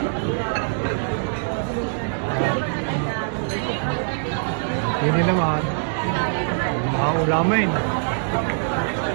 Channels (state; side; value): silent; left; 63 dB below the other